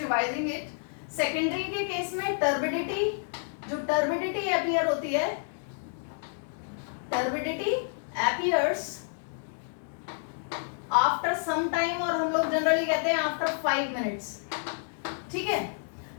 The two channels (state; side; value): silent; right; digital silence